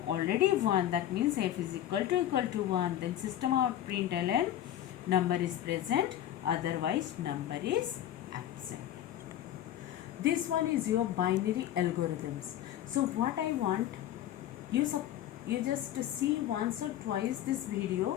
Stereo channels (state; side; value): quieter; right; 12.1 dB